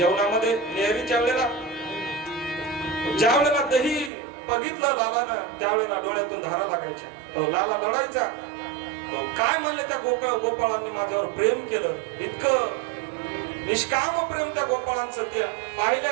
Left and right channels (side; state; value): left; drops out; at 4.1 s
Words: नेहरीच्या वेळेला ज्या वेळेला दही बघितलं लालानं त्यावेळेला डोळ्यातून धारा लागायच्या. लाला लढायचा. काय म्हणले त्या गोपाळांनी माझ्यावर प्रेम केलं. इतकं निष्काम प्रेम त्या गोपाळांचं. त्या